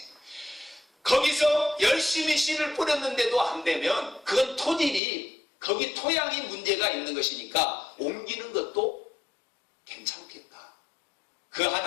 거기서 열심히 씨를 뿌렸는데도 안 되면 그건 토질이 거기 토양이 문제가 있는 것이니까 옮기는 것도 괜찮겠다. 그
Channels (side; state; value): right; drops out; at 5.0 s